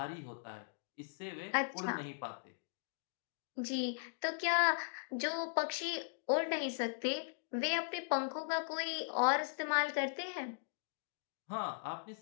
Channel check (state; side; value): silent; right; digital silence